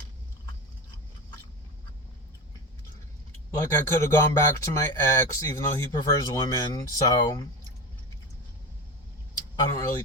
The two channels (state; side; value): normal; both; correlation 0.23